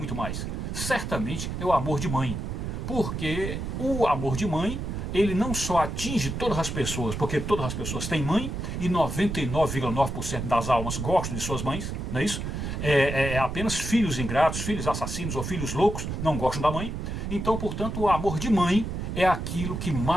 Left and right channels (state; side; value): noise; right; rumble, 4 dB below the sound